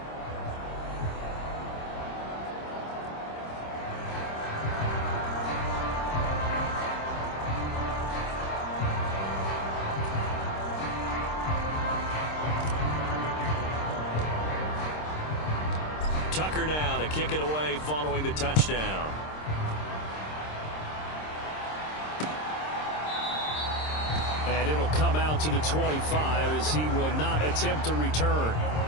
Tucker now to kick it away following the touchdown. And it'll come out to the 25 as he will not attempt a return.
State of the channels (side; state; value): right; late; 26 ms